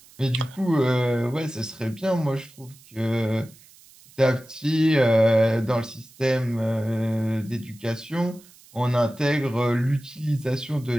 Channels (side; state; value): right; noise; hiss, 25 dB below the sound